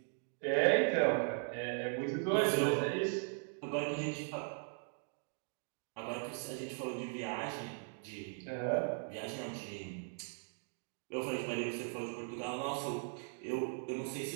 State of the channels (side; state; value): left; silent; 52 dB below the other